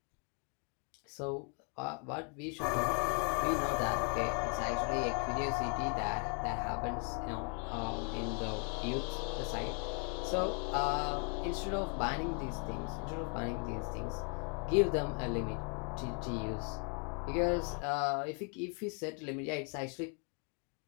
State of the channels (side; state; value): right; quieter; 39.3 dB